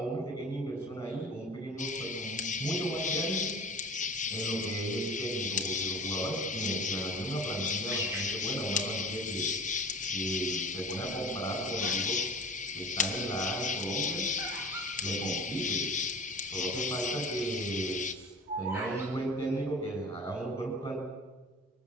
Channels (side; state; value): both; normal; correlation 0.39